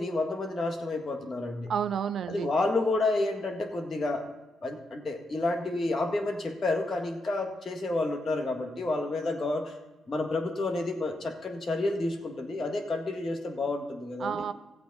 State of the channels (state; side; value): normal; both; correlation 0.82